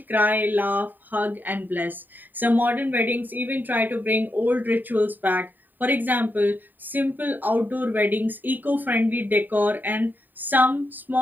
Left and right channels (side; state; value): left; late; 0.089 ms